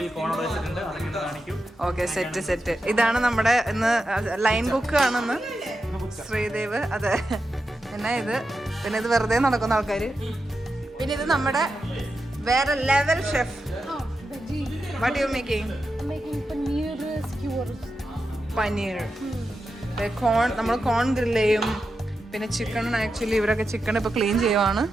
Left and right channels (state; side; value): normal; both; correlation 0.89